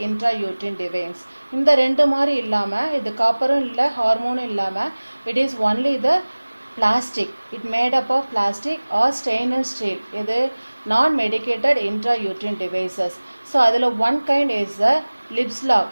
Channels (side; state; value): both; inverted; correlation -1.00